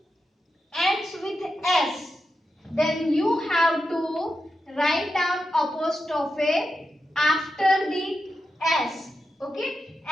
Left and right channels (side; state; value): both; normal; correlation 0.88